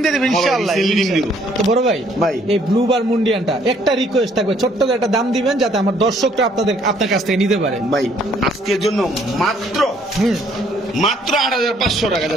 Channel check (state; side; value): normal; both; correlation 0.64